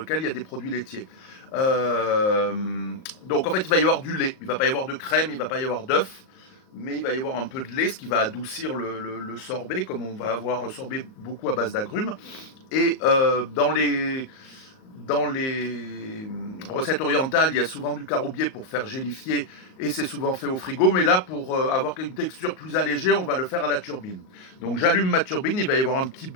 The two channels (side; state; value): right; late; 38 ms